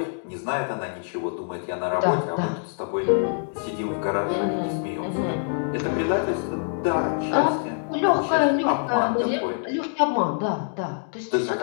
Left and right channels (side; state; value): right; silent; digital silence